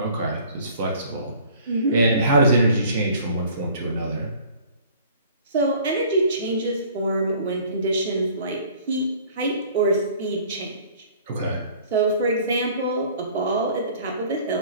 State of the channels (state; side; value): inverted; both; correlation -0.51